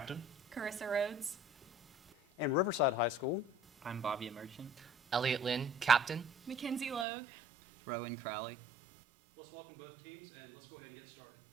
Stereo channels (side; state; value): left; drops out; at 7.1 s